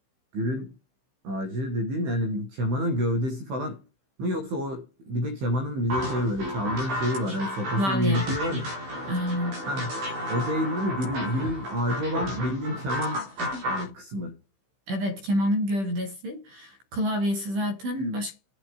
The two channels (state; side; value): late; left; 15 ms